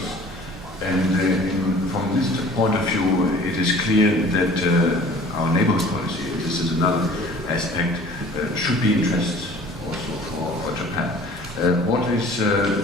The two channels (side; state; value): both; normal; correlation 0.48